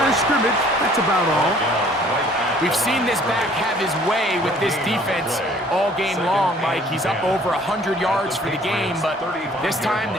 of scrimmage. That's about all. We've seen this back have his way with this defense all game long, Mike. He's up over 100 yards for the game, but this time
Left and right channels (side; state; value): both; normal; correlation 0.56